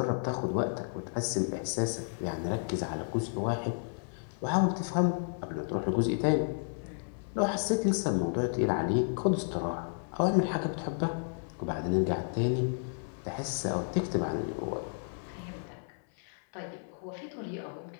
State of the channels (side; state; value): right; silent; 56 dB below the other